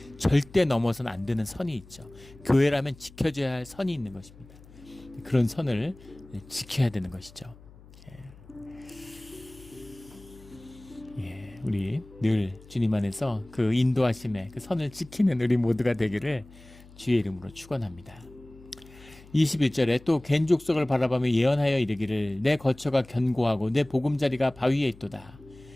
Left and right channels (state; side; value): noise; left; hum, 22 dB below the sound